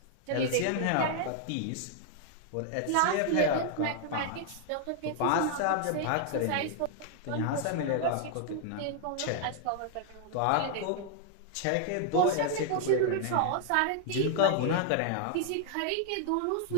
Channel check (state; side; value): different; both; correlation 0.00